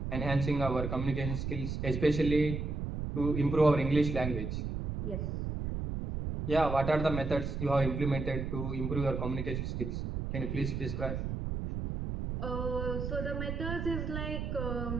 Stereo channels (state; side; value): noise; right; rumble, 3 dB below the sound